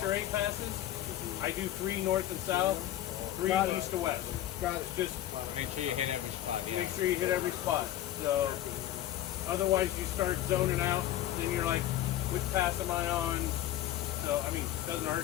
or 8 passes, I do 3 north and south, 3 Got it. east to west. Got it. Just Make sure you hit every spot. Yeah. make sure you hit every spot. So otherwise you start zoning out, then you're like, which pass am I on? So I mean, it doesn't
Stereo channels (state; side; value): quieter; right; 13.0 dB